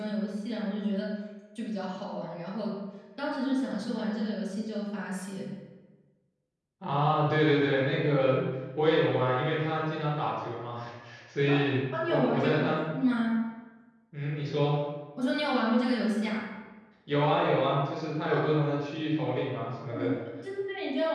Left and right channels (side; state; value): both; identical; correlation 1.00